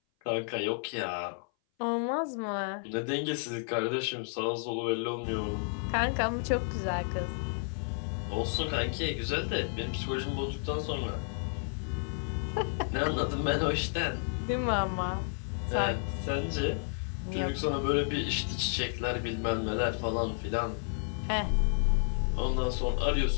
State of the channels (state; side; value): silent; right; 57 dB below the other